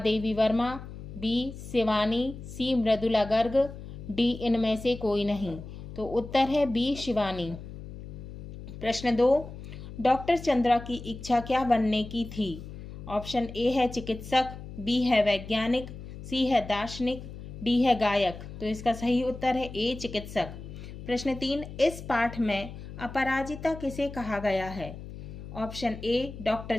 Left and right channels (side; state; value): left; noise; hum, 12 dB below the sound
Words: Verma, B Shivani, C Mridula Garg, D इनमें से कोई नहीं। तो उत्तर है बी शिवानी। प्रश्न 2, डॉक्टर चंद्रा की इच्छा क्या बनने की थी? ऑप्शन ए है चिकित्सक, बी है वैज्ञानिक, सी है दार्शनिक, डी है गायक। तो इसका सही उत्तर है ए चिकित्सक। प्रश्न 3, इस पाठ में अपराजिता किसे कहा गया है? ऑप्शन ए डॉक्टर